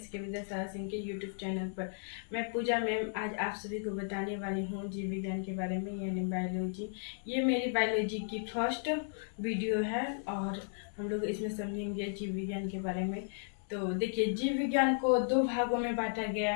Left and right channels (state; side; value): silent; right; 55 dB below the other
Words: विद्यासागर सिंह के यूट्यूब चैनल पर। मैं पूजा मैम आज आप सभी को बताने वाली हूँ जीव विज्ञान के बारे में, यानी बायोलॉजी। ये मेरी बायोलॉजी की फर्स्ट वीडियो है और हम लोग इसमें समझेंगे जीव विज्ञान के बारे में। तो देखिए, जीव विज्ञान को दो भागों में बांटा गया